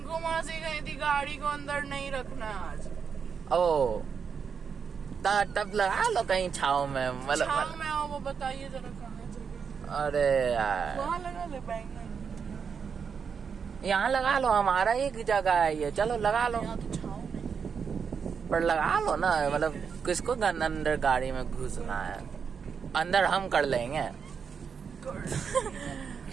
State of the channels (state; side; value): quieter; left; 6.4 dB